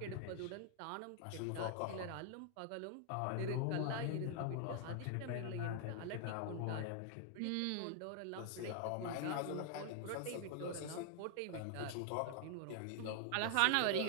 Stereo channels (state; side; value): different; both; correlation 0.00